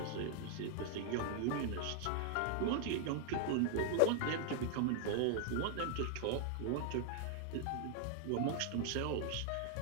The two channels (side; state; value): both; different; correlation 0.00